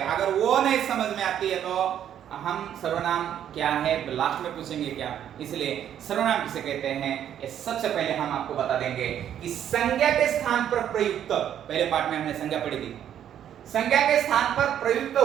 अगर वो नहीं समझ में आती है तो हम सर्वनाम क्या है लास्ट में पूछेंगे क्या, इसलिए सर्वनाम किसे कहते हैं ये सबसे पहले हम आपको बता देंगे कि संज्ञा के स्थान पर प्रयुक्त, पहले पाठ में हमने संज्ञा पढ़ी थी, संज्ञा के स्थान पर प्रयुक्त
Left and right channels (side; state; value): left; quieter; 10.1 dB